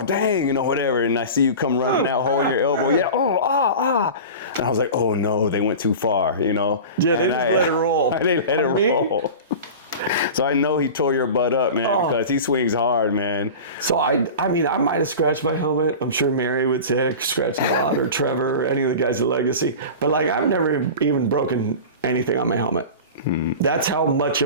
dang, you know, whatever. And I see you come running out, holding your elbow. Yeah, And I was like, oh, no, they went too far, you know. Yeah, they just let it roll. They let it roll. So I know he tore your butt up, man, because he swings hard, man. So, I mean, I might have scratched my helmet. I'm sure Mary would say I scratched a lot, or Trevor, or any of the guys at Legacy. But, like, I've never even broken anything on my helmet. That's how much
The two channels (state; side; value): inverted; both; correlation -0.32